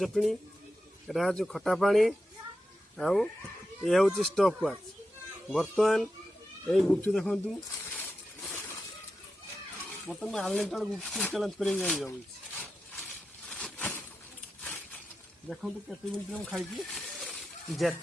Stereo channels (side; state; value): both; normal; correlation 0.90